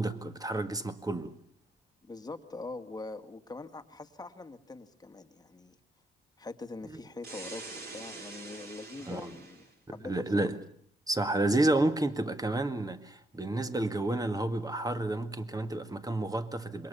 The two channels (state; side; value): normal; both; correlation 0.78